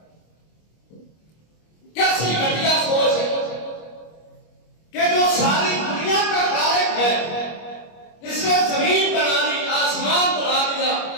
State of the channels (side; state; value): right; late; 25 ms